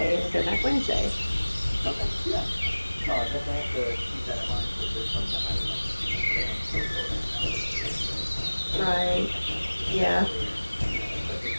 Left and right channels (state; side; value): inverted; both; correlation -1.00